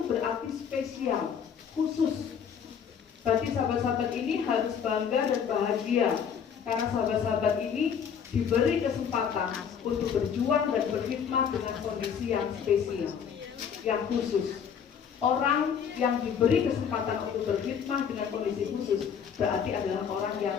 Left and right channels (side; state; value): right; quieter; 7.5 dB